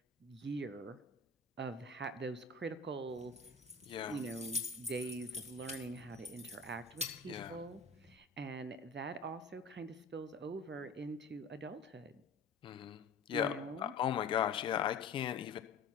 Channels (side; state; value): right; quieter; 3.7 dB